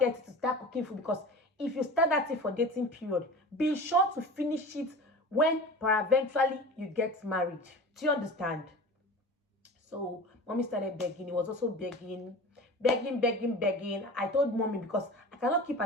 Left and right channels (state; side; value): normal; both; correlation 0.35